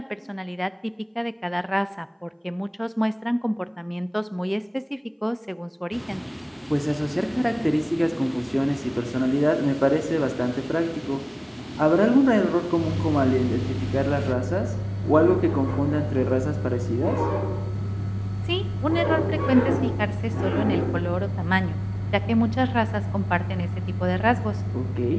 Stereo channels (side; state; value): both; identical; correlation 1.00